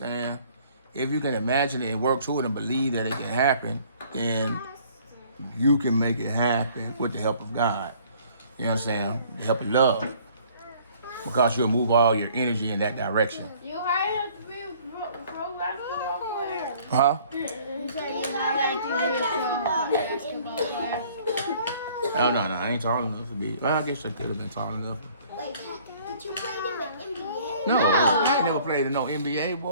If you can imagine it and work toward it and believe that it can happen, then you can make it happen with the help of God. You know what I'm saying? The help of love. Because you'll move all your energy in that direction. You hired to be a pro basketball player. Huh? You said you hired to be a pro basketball player. Oh, no, I ain't tall enough to be. Well, I guess I could have been tall enough. Wait, did you play in the NBA? No, I ain't never played in no NBA,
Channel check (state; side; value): inverted; both; correlation -0.56